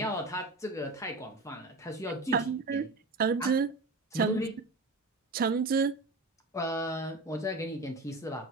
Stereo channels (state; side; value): quieter; left; 3.1 dB